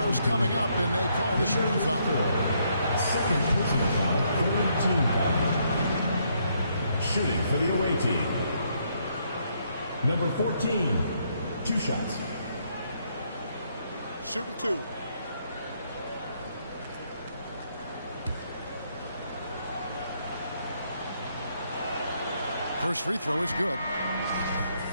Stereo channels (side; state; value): both; inverted; correlation -0.73